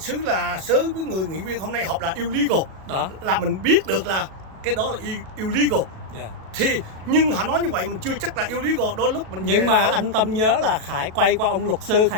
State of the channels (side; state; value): left; late; 37 ms